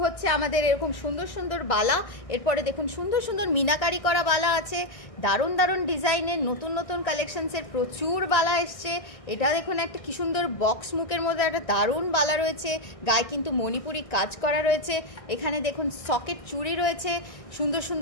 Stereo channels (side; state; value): right; late; 1.6 ms